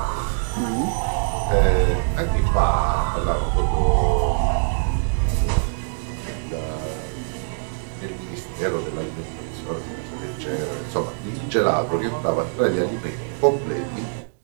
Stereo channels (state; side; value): silent; left; digital silence